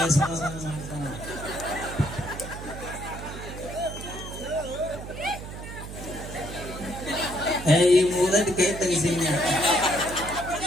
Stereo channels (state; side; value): noise; right; hum, 10 dB below the sound